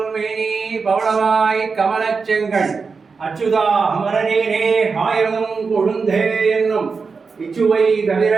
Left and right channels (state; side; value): quieter; left; 4.9 dB